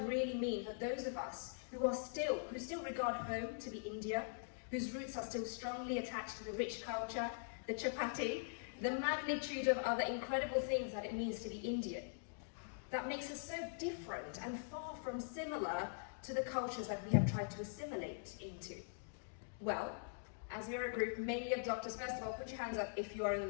really mean for those of us who still regard home to be India, whose roots are still strongly attached to the rich culture, the chapati, the magnitude of other incredible things that it means to be Indian? That makes us so different and far from similar to the cultures that we have tried to assimilate into. Well, as we're a group mainly of doctors, first of all, put your hands up if you are in the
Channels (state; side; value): silent; right; digital silence